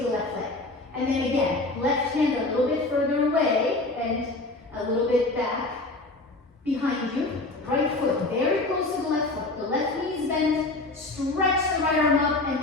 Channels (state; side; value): quieter; right; 3.0 dB